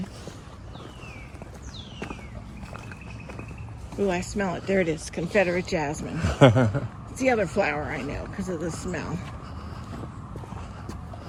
Ooh, I smell it. There it is, Confederate jasmine. It's the other flower I know because of the smell.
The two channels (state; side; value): identical; both; correlation 1.00